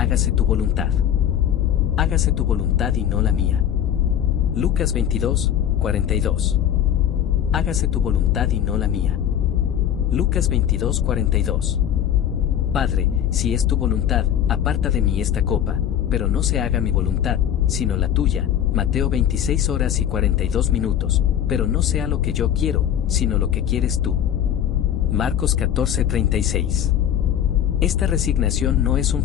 tu voluntad. Hágase tu voluntad y no la mía. Lucas 22, 42. Hágase tu voluntad y no la mía. Lucas 22, 42. Padre, si es tu voluntad, aparta de mí esta copa, pero no se haga mi voluntad, sino la tuya. Mateo 26 horas y 42 minutos, pero no sea lo que yo quiero, sino lo que quieres tú. Marcos 14, 36. Esta resignación no es un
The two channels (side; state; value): right; quieter; 10.0 dB